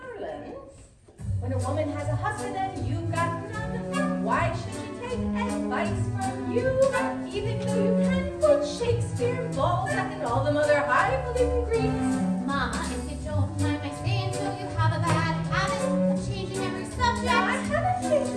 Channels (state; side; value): identical; both; correlation 1.00